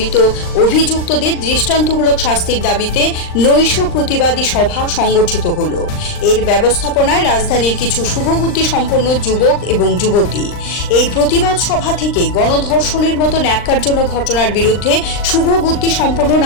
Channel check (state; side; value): late; right; 39 ms